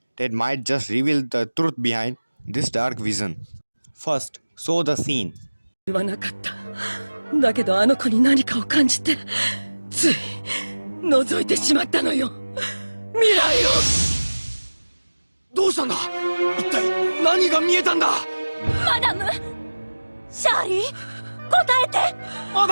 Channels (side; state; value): both; inverted; correlation -1.00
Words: that might just reveal the truth behind this dark vision. First, show the scene. 言わなかった。だけどあの子に何かを感じて、つい覗いてしまったのよ。未来を。どうしたんだ？一体何が見えたんだ？マダム、シャーリー、答えて。マ